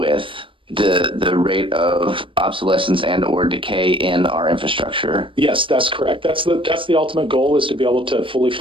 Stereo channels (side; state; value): left; late; 0.25 ms